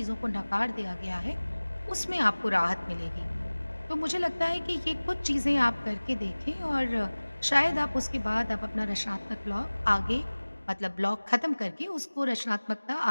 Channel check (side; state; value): both; inverted; correlation -1.00